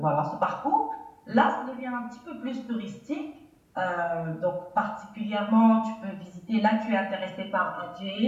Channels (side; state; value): both; identical; correlation 1.00